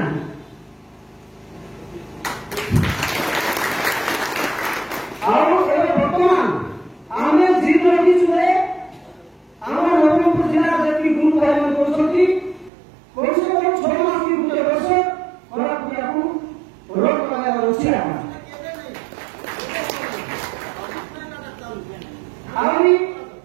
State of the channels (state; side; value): drops out; left; at 12.7 s